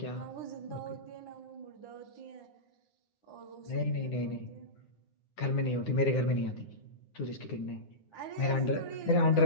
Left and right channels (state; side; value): late; right; 9.7 ms